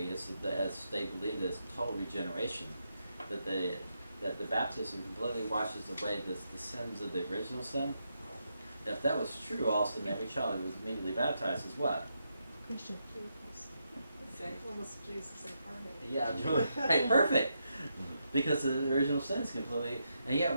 is that as they believe that it's total regeneration, that the baptism completely washes away the sins of the original sin. If that was true, all of a sudden every child who was immediately baptized is what? Christian. Almost Jesus incarnate. Yeah, hey, perfect. Because the original sin is completely, and yet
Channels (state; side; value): inverted; both; correlation -0.82